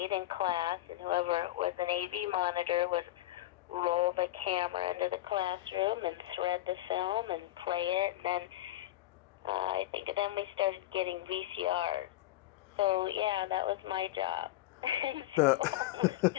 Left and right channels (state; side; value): quieter; right; 15.4 dB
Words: in class, and whoever was an AV monitor would roll the camera into the classroom and thread the film and play it. And then I think then we started getting VCRs. So yeah, that was my job. So I was